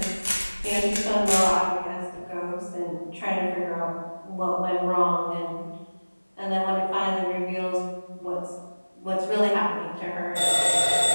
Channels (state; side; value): inverted; both; correlation -1.00